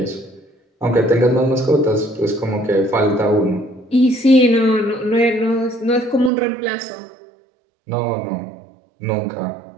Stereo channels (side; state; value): left; drops out; at 6.3 s